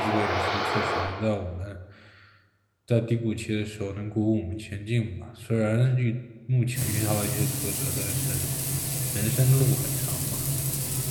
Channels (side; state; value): both; identical; correlation 1.00